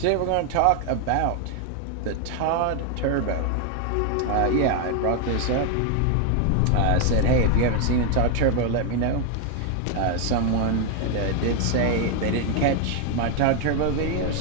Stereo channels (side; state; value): both; different; correlation 0.01